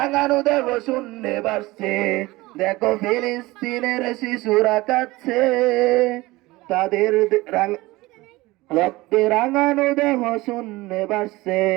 দেহ শূন্যে ভাসছে। দেখো ফিলিস্তিনের শিশুরা কাঁদছে, তাদের রক্তে রাঙানো দেহ শূন্যে ভাসছে।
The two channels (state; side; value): quieter; left; 20.3 dB